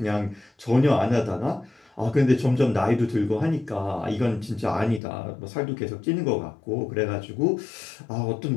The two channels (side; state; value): right; drops out; at 5.0 s